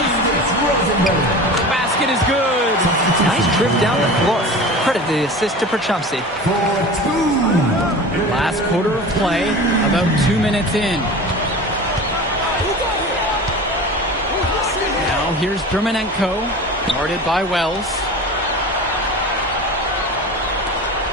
Rosenberg. The basket is good. Nice trip down the floor. Credit the assist to Perchumsey. For two. Last quarter of play, about 2 minutes in. Now here's Dermanenko, guarded by Wells.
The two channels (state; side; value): normal; both; correlation 0.34